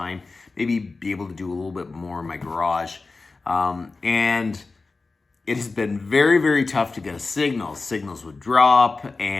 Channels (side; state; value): right; quieter; 3.8 dB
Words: Maybe be able to do a little bit more in my garage. And it has been very, very tough to get a signal. Signals would drop,